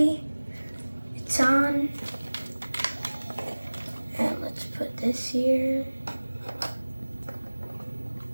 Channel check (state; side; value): inverted; both; correlation -1.00